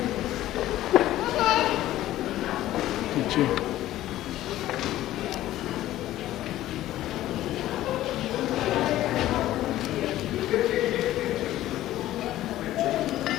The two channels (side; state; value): right; quieter; 14.4 dB